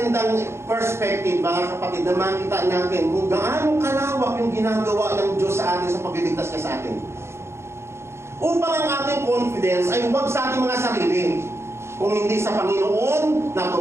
perspective, mga kapatid, na makita natin kung gaano kalawak yung ginagawa ng Diyos sa atin sa pagliligtas niya sa atin. Upang ang ating confidence ay huwag sa ating mga sarili, kung hindi sa Panginoon na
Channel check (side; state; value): left; late; 0.13 ms